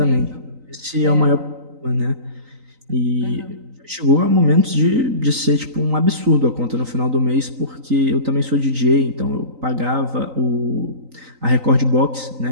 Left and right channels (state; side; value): late; left; 3.9 ms